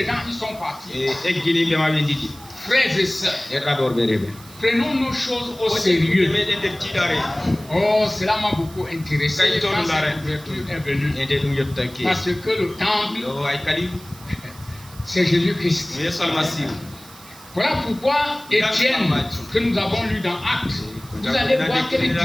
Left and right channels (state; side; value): noise; right; hiss, 20 dB below the sound